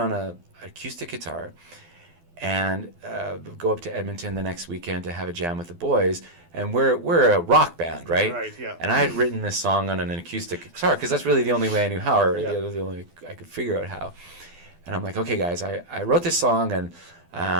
an acoustic guitar, and go up to Edmonton the next weekend to have a jam with the boys. And we're a rock band, right? Right, yeah. And I had written this song on an acoustic guitar because that's really the only way I knew how, or the only way I could figure out how. And I'm like, okay, guys, I wrote this song, and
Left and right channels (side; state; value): left; late; 12 ms